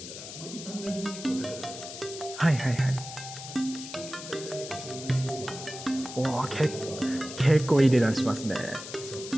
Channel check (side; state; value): left; noise; hiss, 11 dB below the sound